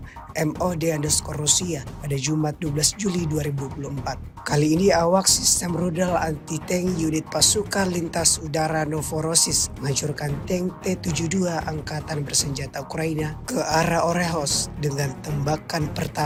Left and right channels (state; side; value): identical; both; correlation 1.00